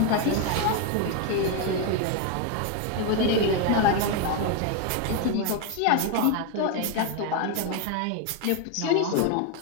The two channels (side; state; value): both; different; correlation 0.01